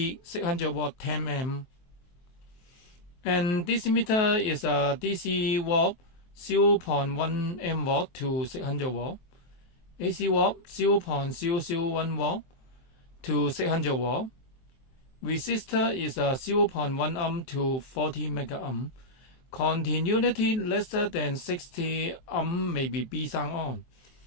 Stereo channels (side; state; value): right; late; 23 ms